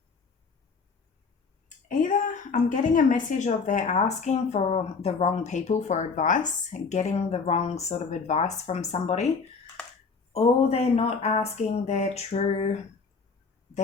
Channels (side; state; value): right; quieter; 4.9 dB